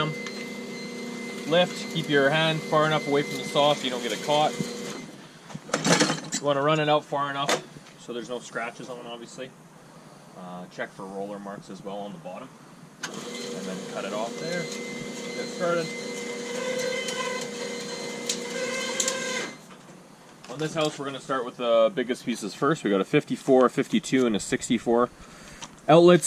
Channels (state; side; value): identical; both; correlation 1.00